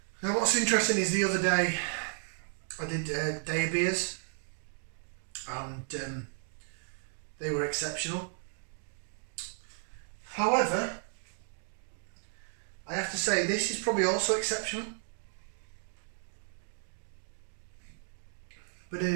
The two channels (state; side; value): silent; left; 55 dB below the other